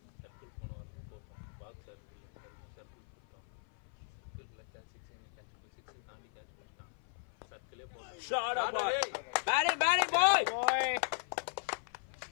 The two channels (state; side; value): silent; right; 53 dB below the other